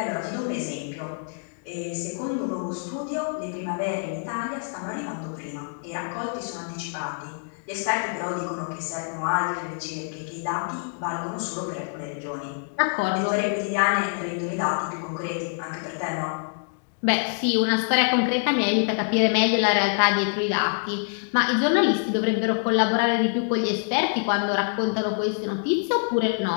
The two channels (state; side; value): silent; right; digital silence